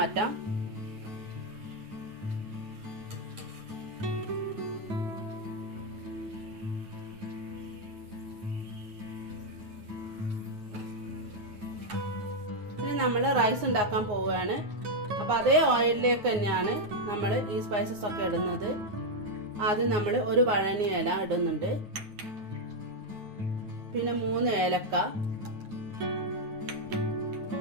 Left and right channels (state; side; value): late; left; 9.6 ms